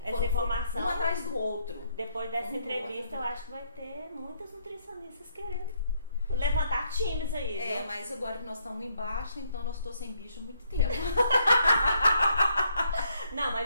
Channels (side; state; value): both; inverted; correlation -0.72